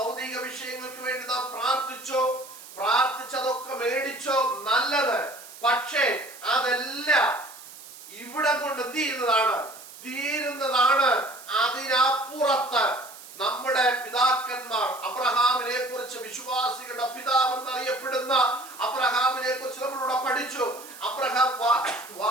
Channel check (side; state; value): right; noise; hiss, 17 dB below the sound